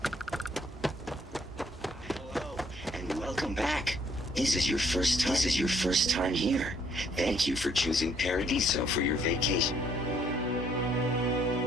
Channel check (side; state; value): both; normal; correlation 0.66